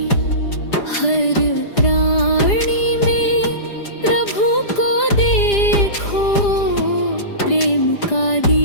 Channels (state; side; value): late; right; 4.9 ms